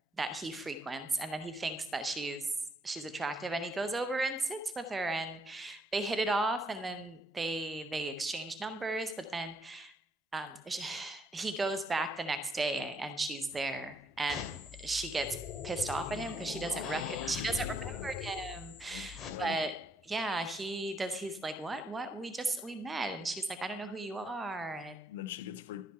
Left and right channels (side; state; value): both; normal; correlation 0.73